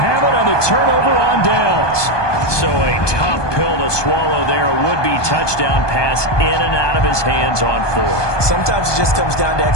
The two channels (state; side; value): late; right; 1.2 ms